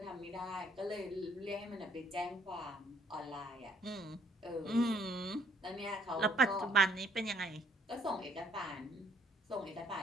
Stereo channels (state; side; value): normal; both; correlation 0.64